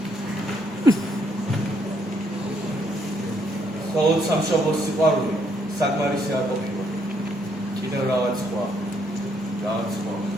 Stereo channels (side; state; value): both; normal; correlation 0.71